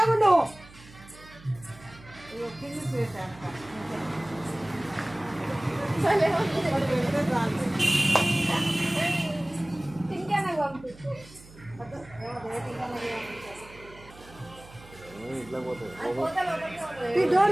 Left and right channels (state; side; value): noise; right; hum, 21 dB below the sound